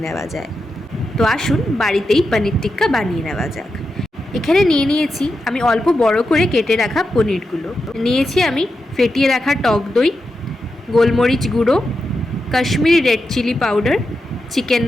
নেওয়া যায়। তো আসুন বাড়িতেই পনির টিক্কা বানিয়ে নেওয়া যাক। এখানে নিয়েছি আমি অল্প বড় করে কেটে রাখা পনিরগুলো। নিয়েছি আমি ফেটিয়ে রাখা টক দই, গোলমরিচ গুঁড়ো, Kashmiri red chilli powder, chicken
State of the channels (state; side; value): normal; both; correlation 0.88